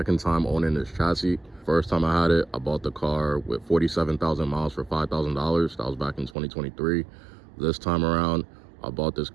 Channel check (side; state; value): left; drops out; at 6.4 s